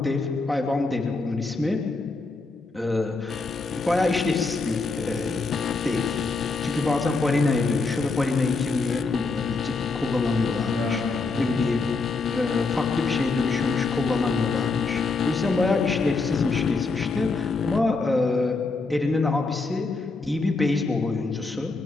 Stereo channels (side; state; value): right; quieter; 3.9 dB